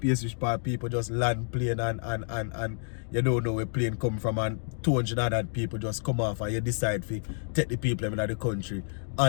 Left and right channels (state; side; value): silent; right; digital silence